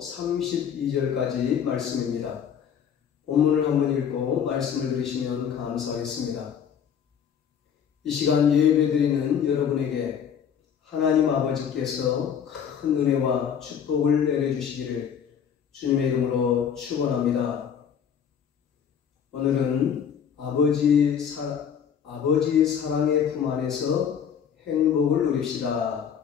말씀입니다. 본문을 한번 읽고 말씀을 들으시면 감사하겠습니다. 이 시간 예배드리는 여러분에게 하나님 아버지께서 큰 은혜와 축복을 내려주시기를 주님의 이름으로 축원합니다. 오늘은 아버지 사랑의 품 안에서 행복을 누립시다.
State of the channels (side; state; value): right; quieter; 8.0 dB